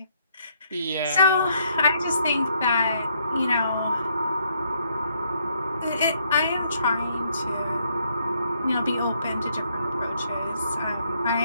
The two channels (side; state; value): both; inverted; correlation -0.71